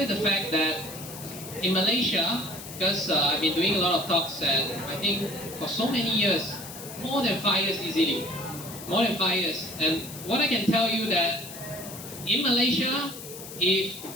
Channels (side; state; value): left; noise; hiss, 13 dB below the sound